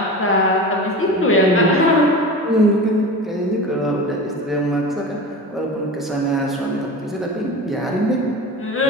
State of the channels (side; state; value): both; normal; correlation 0.31